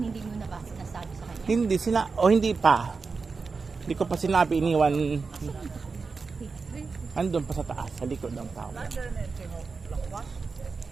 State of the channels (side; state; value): left; quieter; 4.6 dB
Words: mo na ba sinasabi sa kanya? Hindi pa. Hindi ko pa sinabi, iniwan. Andun pa sa taas, sa likod ng tao.